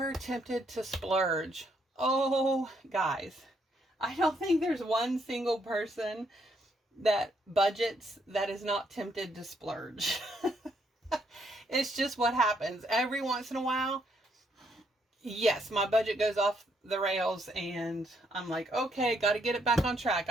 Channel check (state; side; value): normal; both; correlation 0.73